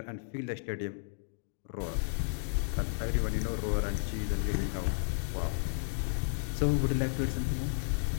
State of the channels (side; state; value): right; silent; digital silence